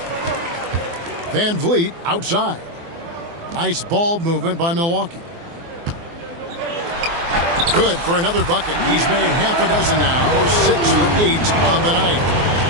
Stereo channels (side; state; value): left; late; 24 ms